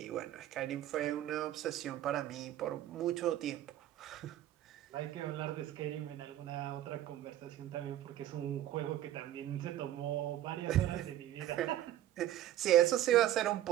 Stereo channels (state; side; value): quieter; left; 12.8 dB